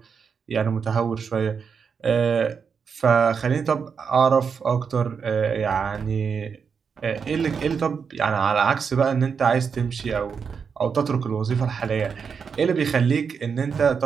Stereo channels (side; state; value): left; quieter; 6.2 dB